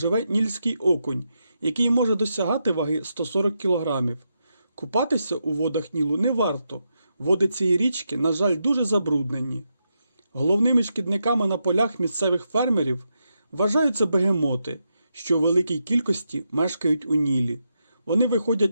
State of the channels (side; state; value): both; inverted; correlation -0.84